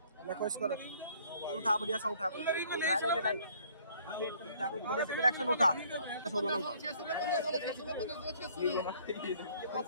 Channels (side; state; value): both; inverted; correlation -0.60